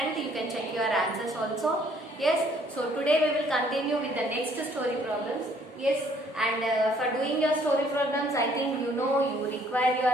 You can check your answers also. Yes, so today we will continue with the next story problems. Yes, and for doing your story problems, I think you know you require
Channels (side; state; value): both; normal; correlation 0.62